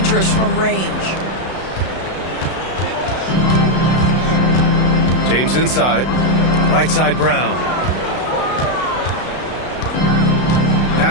from range. James inside. Right side Brown.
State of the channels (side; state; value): right; late; 32 ms